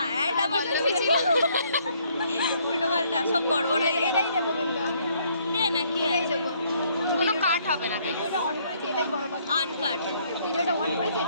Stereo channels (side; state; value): both; inverted; correlation -0.66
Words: অ্যাড আমার পল্লবী ছিল। উল্টো পাল্টা সব গড়বড় হয়ে গেছে। এটাই দেবো কিন্তু আমি, দে না কি এটাই আছে দেবো। কোনো কাট হবে না। ভিডিওটা অন করেছি এটাই বড় কথা, আনকাট। ভিডিওটা অন করেছি